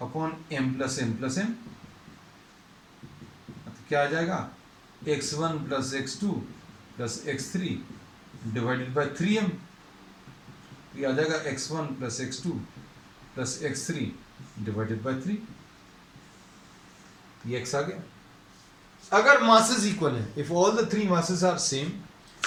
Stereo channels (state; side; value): identical; both; correlation 1.00